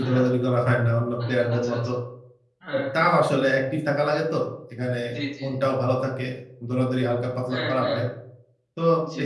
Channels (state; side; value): identical; both; correlation 1.00